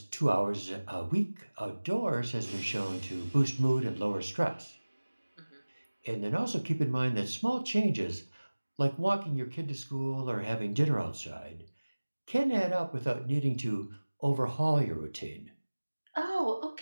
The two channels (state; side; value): inverted; both; correlation -1.00